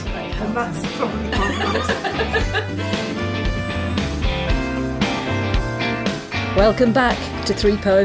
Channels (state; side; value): identical; both; correlation 1.00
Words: very helpful. And that's probably quite nice. Welcome back to 3